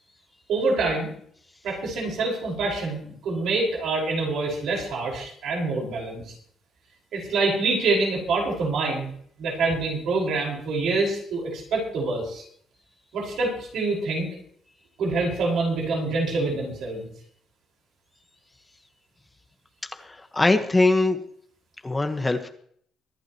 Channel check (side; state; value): both; normal; correlation 0.74